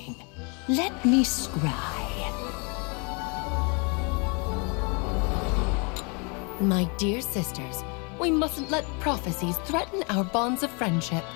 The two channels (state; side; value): quieter; right; 33.2 dB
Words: Let me scry. My dear sisters, we mustn't let prophecies threaten our bonds of friendship.